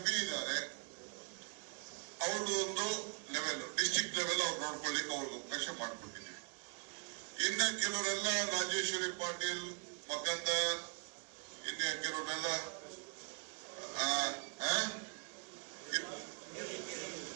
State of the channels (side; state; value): left; quieter; 35.9 dB